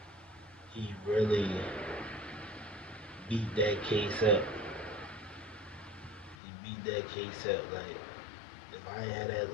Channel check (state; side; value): drops out; right; at 6.4 s